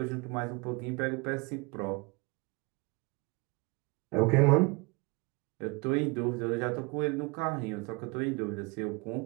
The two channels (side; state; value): left; quieter; 28.0 dB